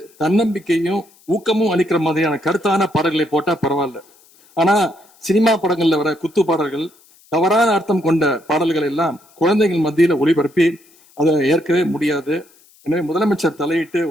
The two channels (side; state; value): left; noise; hiss, 29 dB below the sound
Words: தன்னம்பிக்கையும் ஊக்கமும் அளிக்கிற மாதிரியான கருத்தான பாடல்களை போட்டா பரவாயில்ல. ஆனா சினிமா படங்கள்ல வர குத்து பாடல்கள், தவறான அர்த்தம் கொண்ட பாடல்கள் எல்லாம் குழந்தைகள் மத்தியில ஒளிபரப்பி அதை ஏற்கவே முடியாது. எனவே முதலமைச்சர் தலையிட்டு